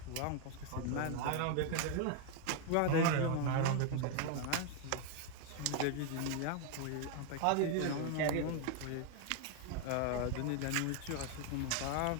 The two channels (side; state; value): both; different; correlation 0.01